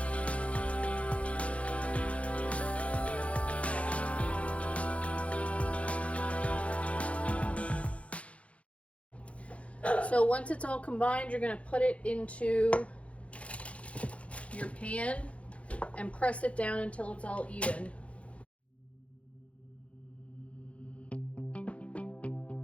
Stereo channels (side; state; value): right; late; 0.063 ms